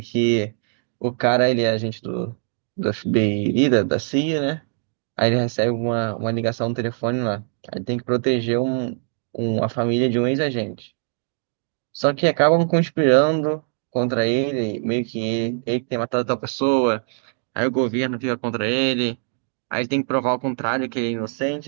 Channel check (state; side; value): silent; left; 63 dB below the other